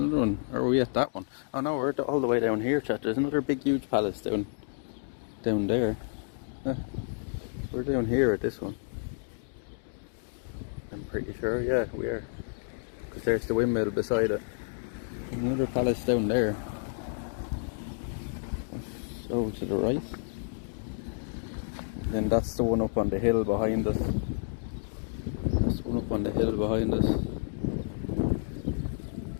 one. Or are we at that one? Oh no, we're all the way down here, chat. There's another big huge palace down there. We're down here at this one, I'm pretty sure. Yeah, we are, because there's the windmill beside it. There's another palace down there. Over to the right, and then that's the one up on the hill behind us. That's the one up on the hill behind us.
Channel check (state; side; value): silent; right; digital silence